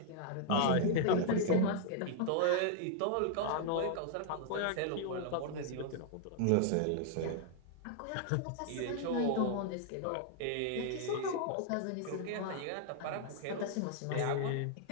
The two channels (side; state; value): both; different; correlation -0.01